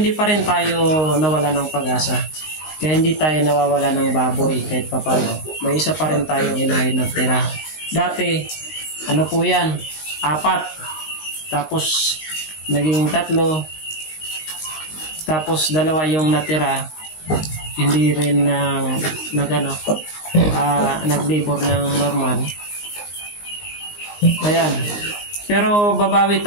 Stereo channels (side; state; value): right; late; 19 ms